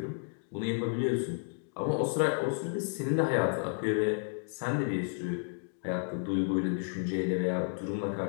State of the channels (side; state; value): right; silent; digital silence